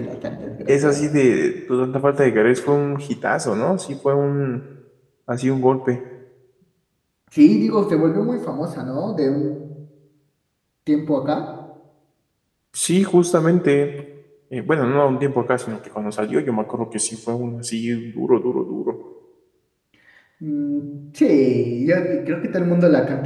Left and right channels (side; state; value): both; identical; correlation 1.00